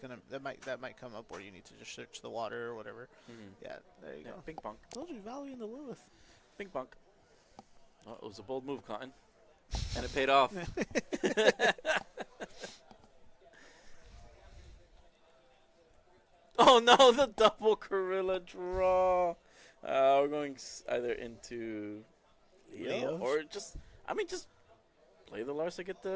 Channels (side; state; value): both; identical; correlation 1.00